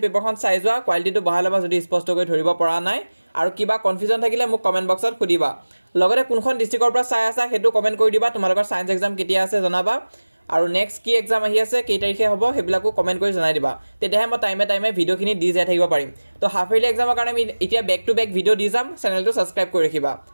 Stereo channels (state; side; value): inverted; both; correlation -1.00